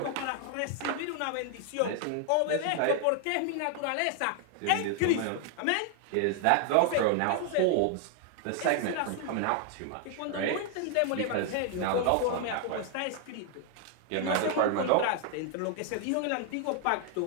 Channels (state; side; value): different; both; correlation 0.00